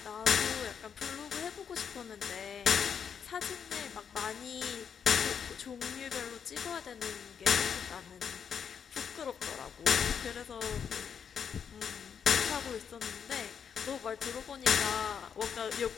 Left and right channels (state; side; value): quieter; right; 7.3 dB